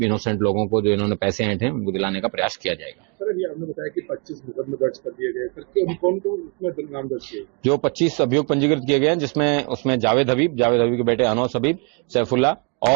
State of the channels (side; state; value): left; quieter; 36.0 dB